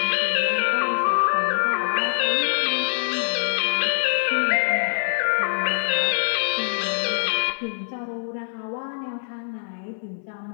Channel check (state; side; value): silent; right; 58 dB below the other